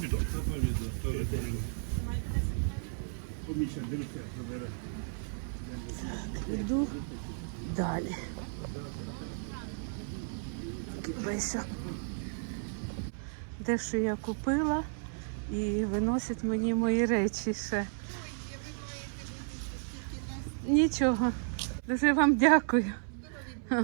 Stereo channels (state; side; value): silent; left; 56 dB below the other